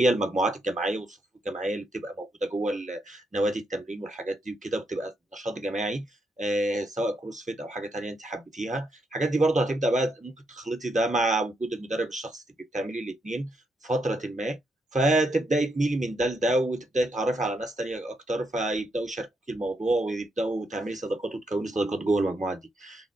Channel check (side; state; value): both; normal; correlation 0.79